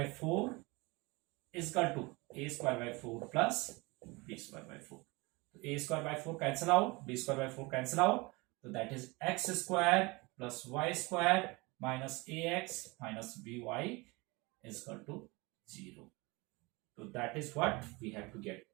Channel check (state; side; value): quieter; left; 25.1 dB